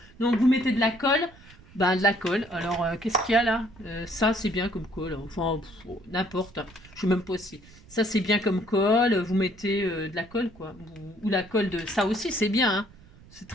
Donc, vous mettez de la colle. Ben, de la colle. Alors, qu'est-ce qu'il y a là? Ça, c'est bien comme colle. Enfin, n'importe. Je sais même pas si. Ça, c'est bien comme colle. Vous mettez de la colle, quoi. Ou la colle de... Ça aussi, c'est bien, hein. C'est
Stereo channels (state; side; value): noise; right; rumble, 23 dB below the sound